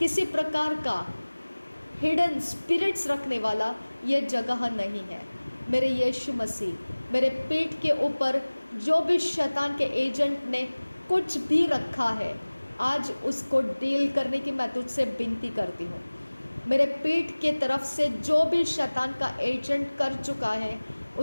प्रकार का हिडन स्पिरिट्स रखने वाला यह जगह नहीं है। मेरे यीशु मसीह, मेरे पेट के ऊपर जो भी शैतान के एजेंट ने कुछ भी रखा है, आज उसको डील करने की मैं तुझसे विनती करती हूँ। मेरे पेट के तरफ से जो भी शैतान का एजेंट कर चुका है,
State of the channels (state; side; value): inverted; both; correlation -1.00